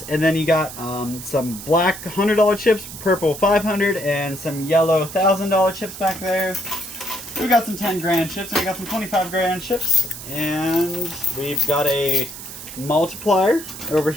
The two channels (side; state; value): right; noise; hiss, 12 dB below the sound